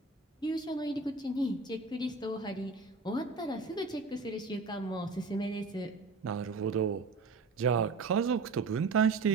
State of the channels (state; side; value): quieter; left; 4.2 dB